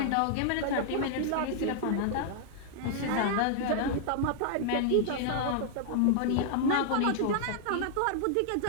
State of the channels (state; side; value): different; both; correlation -0.01